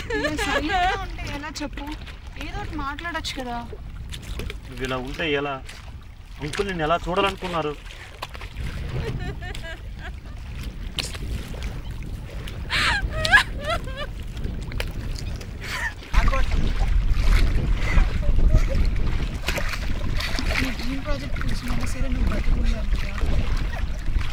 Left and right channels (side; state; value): both; identical; correlation 1.00